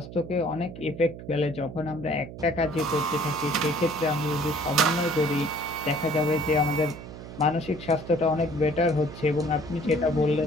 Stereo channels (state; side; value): noise; right; hum, 13 dB below the sound